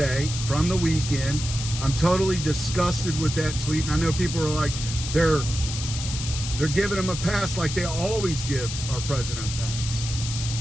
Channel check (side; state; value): left; noise; hiss, 7 dB below the sound